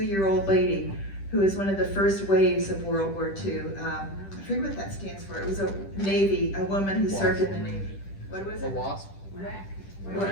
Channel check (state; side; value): late; right; 10 ms